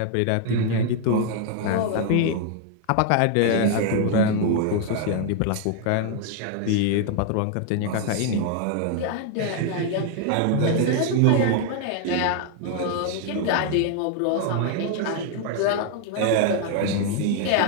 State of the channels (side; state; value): both; different; correlation 0.00